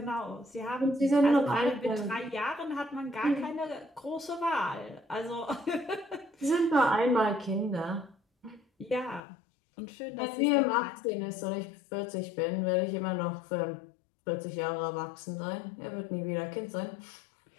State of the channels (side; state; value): right; drops out; at 9.2 s